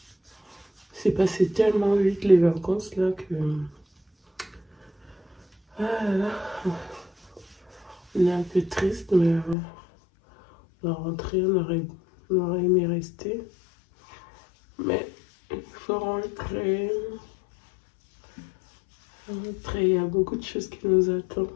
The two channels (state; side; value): drops out; right; at 9.6 s